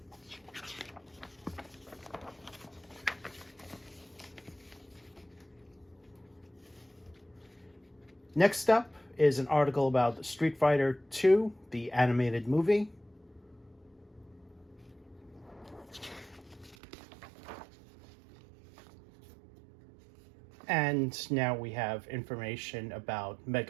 Next up is an article about Street Fighter 2, the animated movie. And now we have information about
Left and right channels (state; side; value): drops out; left; at 16.8 s